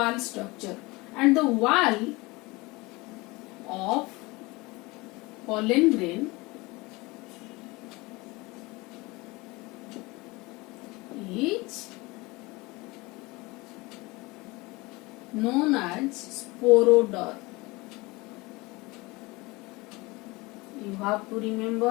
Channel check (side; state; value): right; quieter; 23.5 dB